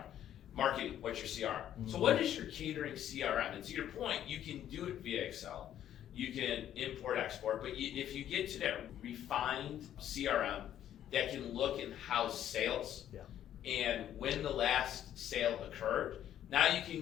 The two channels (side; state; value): right; quieter; 11.0 dB